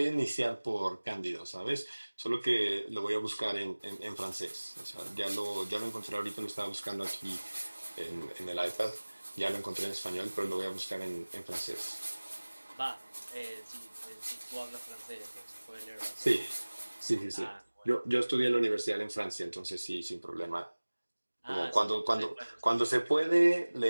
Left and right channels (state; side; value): inverted; both; correlation -1.00